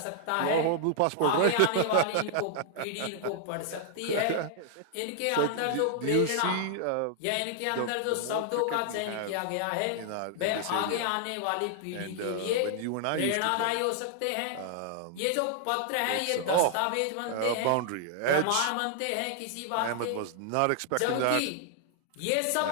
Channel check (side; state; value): both; different; correlation 0.00